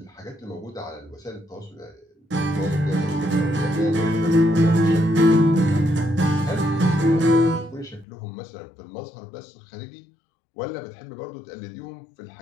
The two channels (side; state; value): right; drops out; at 8.1 s